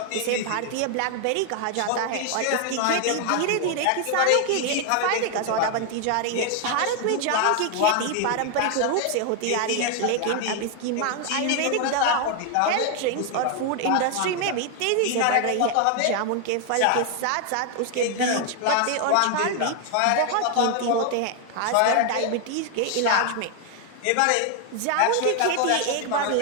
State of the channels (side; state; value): both; different; correlation 0.00